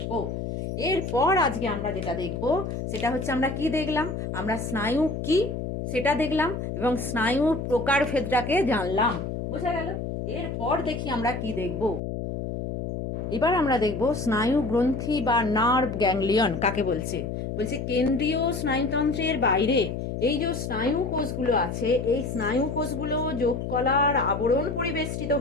এরপর আজকে আমরা যেটা দেখব সেটা হচ্ছে, আমরা কি দেখলাম, আমরা স্নায়ু কি সেটা দেখলাম এবং স্নায়ুর প্রকারভেদটাকে জানলাম। বোঝা গেল? এরপর দেখি আমরা কি দেখব। এবার আমরা দেখব স্নায়ু গ্রন্থি বা নার্ভ গ্যাংলিয়ন কাকে বলছে। বলছে কেন্দ্রীয় স্নায়ুতন্ত্রের বাইরে এই যে স্নায়ু কোষগুলো আছে, এই স্নায়ু কোষগুলো যোগকলার আবরণ পরিবেষ্টিত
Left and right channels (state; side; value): noise; left; hum, 4 dB below the sound